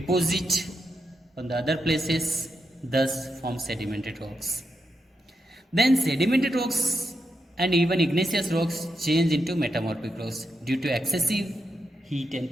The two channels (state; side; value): normal; both; correlation 0.84